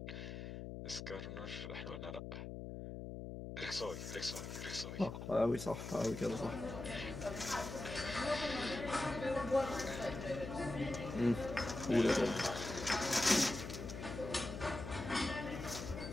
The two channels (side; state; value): left; noise; hum, 7 dB below the sound